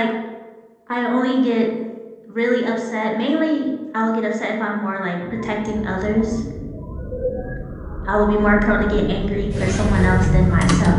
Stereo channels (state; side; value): identical; both; correlation 1.00